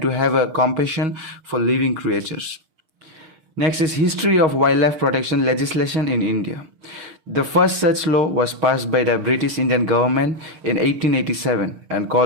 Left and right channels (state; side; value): late; left; 6.6 ms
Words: to have a compassion for living creatures. Next is History of Wildlife Protection Legislation in India. The first such law was passed by the British Indian government in 1887 and